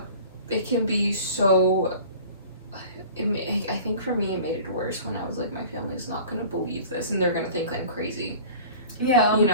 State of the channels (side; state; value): both; inverted; correlation -0.43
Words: it can be so. I think for me it made it worse when I was like, my family's not gonna believe this and they're gonna think I'm crazy. Yeah. You